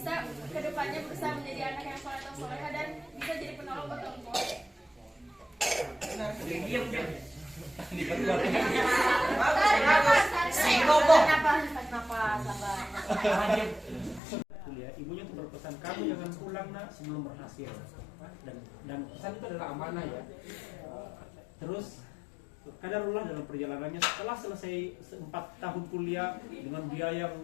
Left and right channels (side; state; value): right; drops out; at 14.2 s